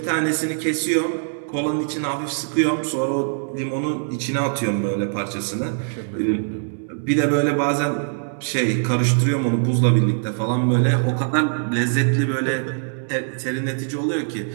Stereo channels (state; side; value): silent; left; 64 dB below the other